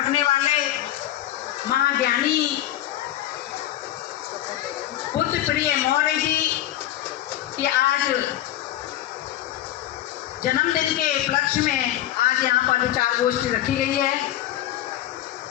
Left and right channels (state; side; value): quieter; right; 13.1 dB